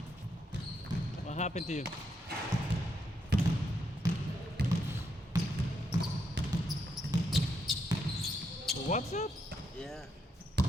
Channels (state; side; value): normal; both; correlation 0.79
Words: What happened to you? What's up? Yeah.